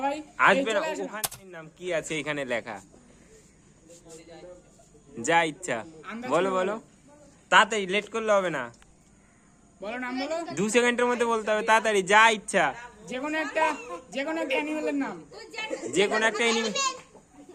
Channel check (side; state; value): both; identical; correlation 1.00